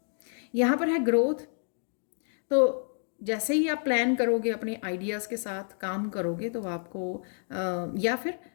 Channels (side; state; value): right; silent; 58 dB below the other